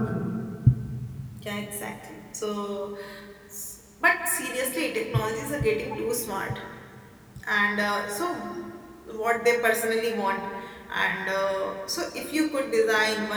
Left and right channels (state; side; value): identical; both; correlation 1.00